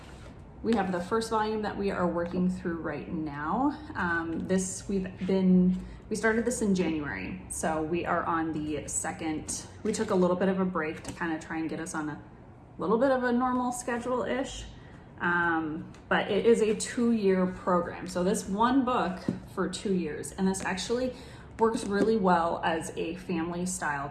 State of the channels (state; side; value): identical; both; correlation 1.00